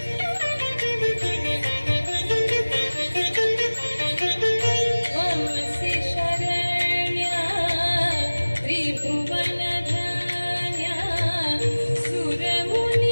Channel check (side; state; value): both; inverted; correlation -1.00